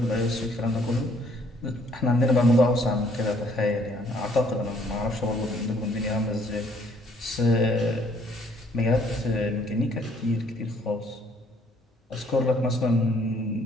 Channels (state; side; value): normal; both; correlation 0.63